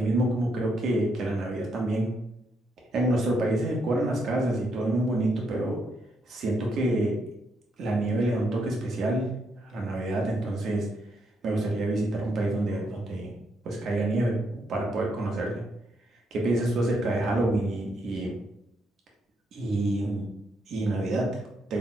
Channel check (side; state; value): both; normal; correlation 0.77